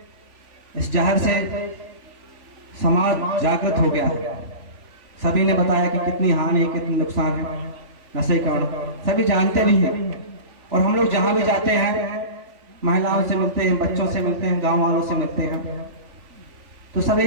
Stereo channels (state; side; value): late; left; 3.5 ms